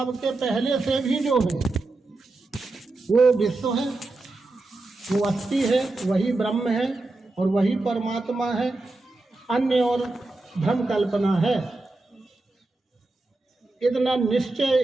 के पहले से भी जो है वो विश्व है, वो अस्थि है, वही ब्रह्म है और वही परमात्मा है। अन्य और भ्रम कल्पना है। इतना निश्चय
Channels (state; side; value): quieter; left; 3.1 dB